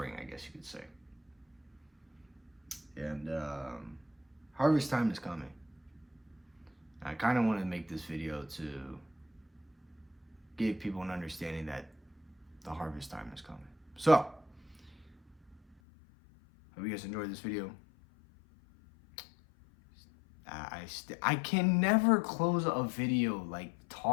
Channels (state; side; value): drops out; right; at 15.8 s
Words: I guess you could say. And harvest time is coming. I kind of want to make this video to give people an understanding that the harvest time is coming. So, hope you guys enjoyed this video. I can never close a video like